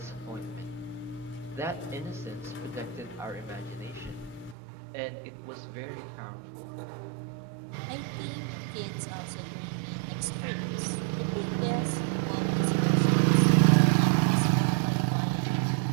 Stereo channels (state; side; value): drops out; left; at 4.5 s